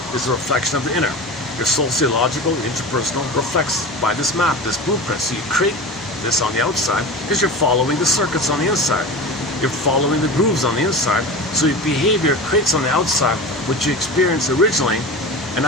is a reflection of the inner. Your sociological, interpersonal reflects by this map, this blueprint. So you create this on the outside because you're following the circuits on the inside. You're following the grooves on the inside. So your behavior creates on the outside what you experienced originally. And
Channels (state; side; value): normal; both; correlation 0.30